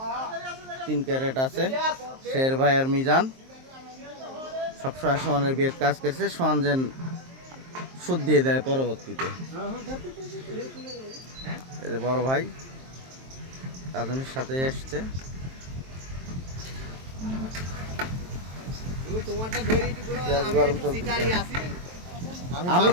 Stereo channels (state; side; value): late; left; 23 ms